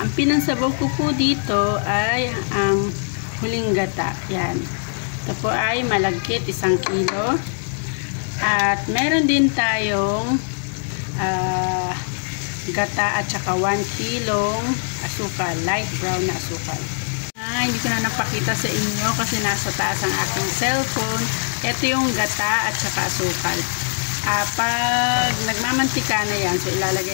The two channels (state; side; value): silent; right; digital silence